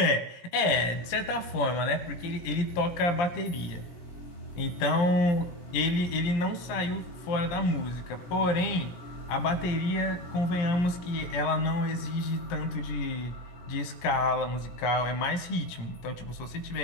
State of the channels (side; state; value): right; late; 17 ms